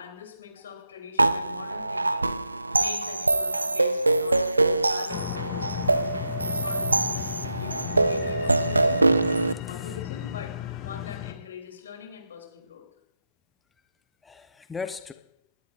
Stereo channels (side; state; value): both; inverted; correlation -0.86